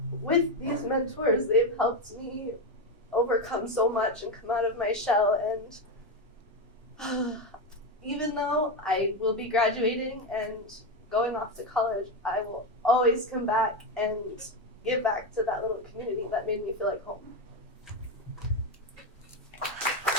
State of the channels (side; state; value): both; normal; correlation 0.12